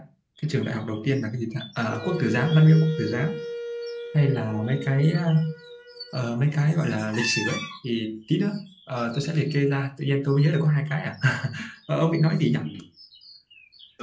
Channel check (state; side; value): identical; both; correlation 1.00